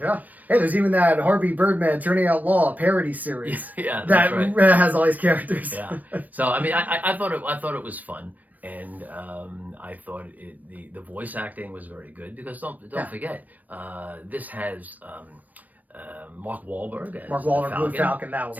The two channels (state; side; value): late; left; 0.080 ms